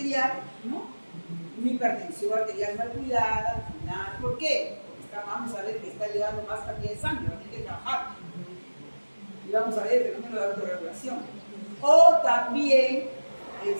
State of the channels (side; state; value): both; inverted; correlation -1.00